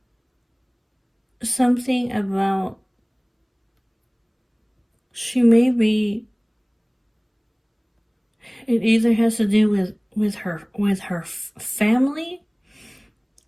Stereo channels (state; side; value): identical; both; correlation 1.00